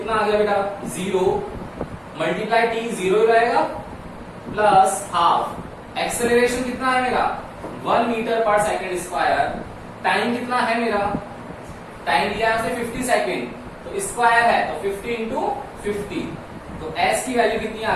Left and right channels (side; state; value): both; identical; correlation 1.00